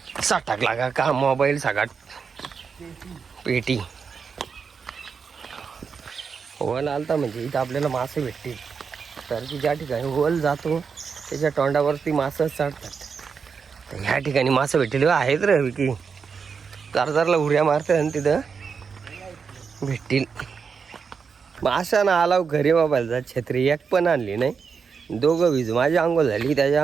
असा टाकला का का मोबाईल सगळ्यात पेटी. वल आलता म्हणजे इथं आपल्याला मासे भेटतील. तर की ज्या ठिकाणी वल जातो त्याच्या तोंडावरती मासे चढतात. तर ह्या ठिकाणी मासे भेटतील आहेत रे विकी. चारदारला उड्या मारतात आणि तिथं भेटतील. माशा ना आला घरी मोबाईलचा छत्री एक पण आणली नाही. दोघं वीज, माझी आंघोळ झाली त्याची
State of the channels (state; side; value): quieter; left; 5.8 dB